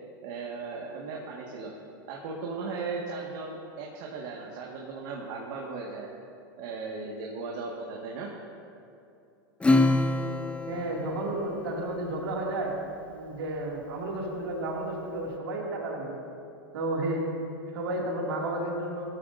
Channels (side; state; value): both; normal; correlation 0.37